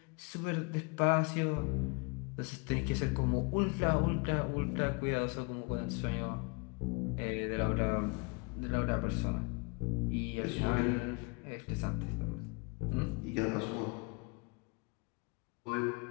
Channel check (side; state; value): right; quieter; 32.0 dB